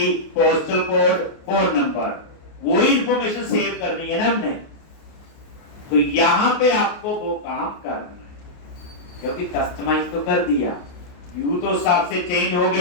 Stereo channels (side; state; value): right; late; 28 ms